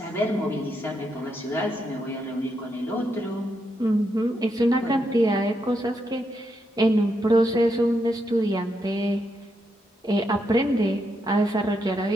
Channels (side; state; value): both; normal; correlation 0.81